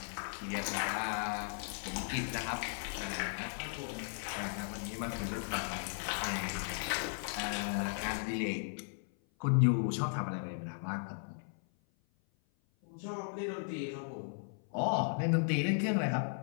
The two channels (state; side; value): silent; right; 54 dB below the other